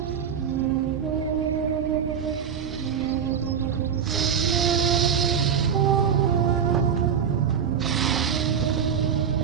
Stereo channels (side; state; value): left; quieter; 7.7 dB